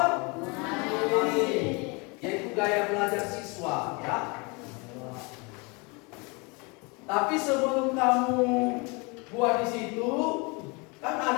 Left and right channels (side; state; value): right; quieter; 29.4 dB